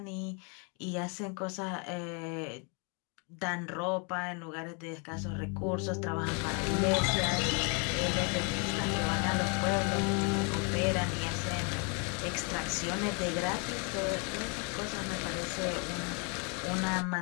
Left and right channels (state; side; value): quieter; right; 35.5 dB